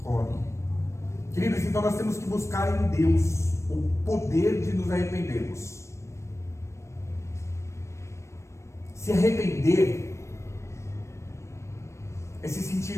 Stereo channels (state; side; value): late; right; 0.14 ms